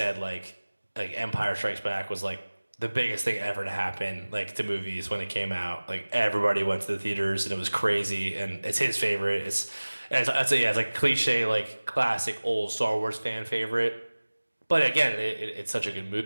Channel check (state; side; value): inverted; both; correlation -1.00